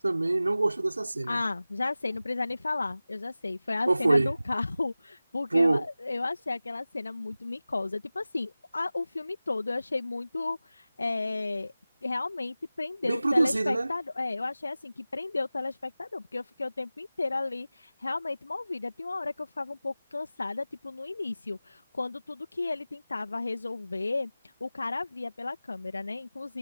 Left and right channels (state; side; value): inverted; both; correlation -0.96